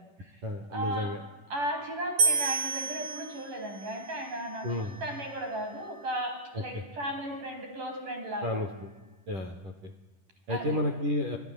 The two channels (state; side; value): late; left; 10 ms